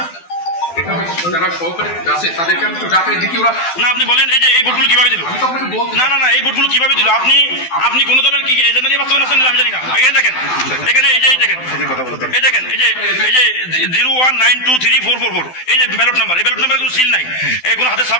যারা সহকারী আছে তাদেরকে আমি একটু ডাকাই দেখি ওরা না, আপনি বলেন এই যে এই ভোটগুলো কিভাবে দিল? না না না, এই ভোটগুলো কিভাবে দিল? আপনি কোন দলের কি এজেন্ডা নিয়ে বাস্তবায়ন আছেন আমি জানি না। আগে দেখেন এখানে এই যে দেখেন এই যে 01923444 এই যে ব্যালট নাম্বার, এই ব্যালট নাম্বারে কোনো সিল নাই, কোনো হাতে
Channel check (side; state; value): right; late; 12 ms